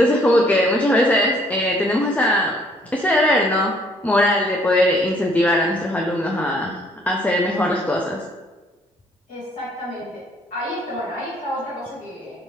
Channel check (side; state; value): both; normal; correlation 0.63